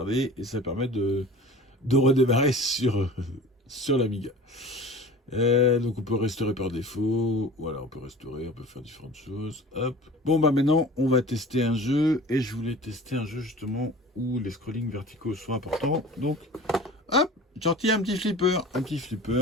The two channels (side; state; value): both; normal; correlation 0.40